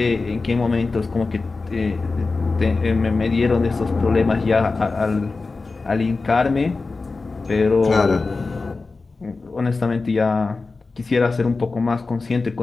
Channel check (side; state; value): right; quieter; 3.9 dB